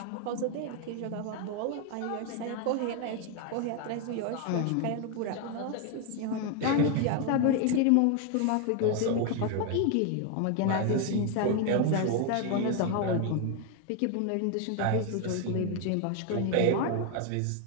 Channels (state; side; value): different; both; correlation 0.01